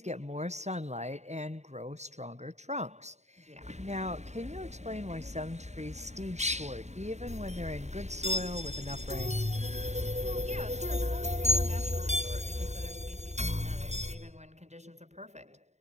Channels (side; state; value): left; late; 0.33 ms